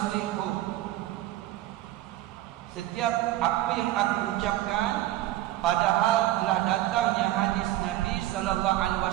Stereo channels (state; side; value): quieter; left; 15.2 dB